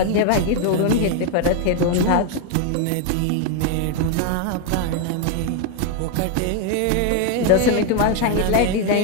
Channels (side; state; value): both; different; correlation 0.01